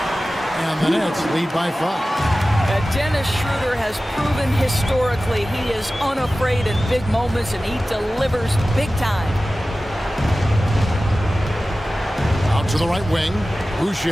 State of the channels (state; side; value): normal; both; correlation 0.96